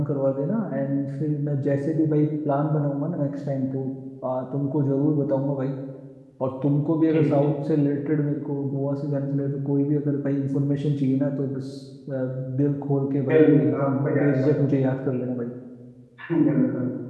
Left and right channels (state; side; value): identical; both; correlation 1.00